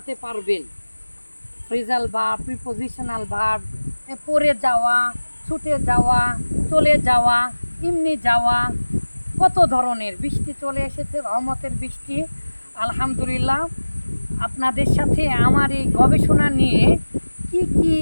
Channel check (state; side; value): inverted; both; correlation -1.00